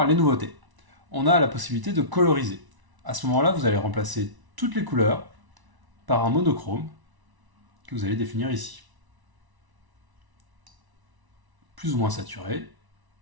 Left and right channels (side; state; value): left; late; 1.0 ms